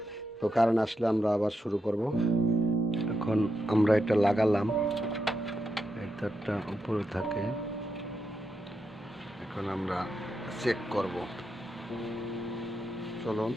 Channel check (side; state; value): both; normal; correlation 0.84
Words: তো কারেন্ট আসলে আমরা আবার শুরু করব। এখন আমরা এটা লাগালাম, এটা উপরে থাকে। এখন আমরা চেক করব। চলুন